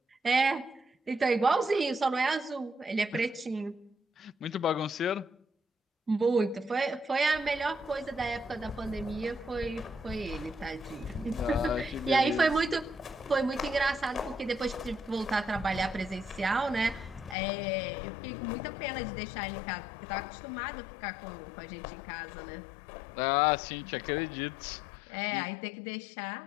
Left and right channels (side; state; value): right; drops out; at 17.4 s